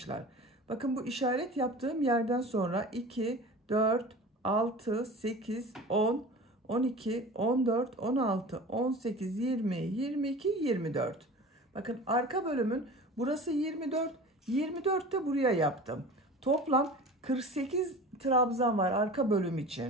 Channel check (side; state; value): both; normal; correlation 0.37